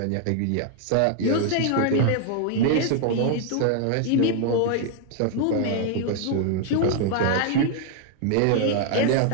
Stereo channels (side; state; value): both; different; correlation 0.00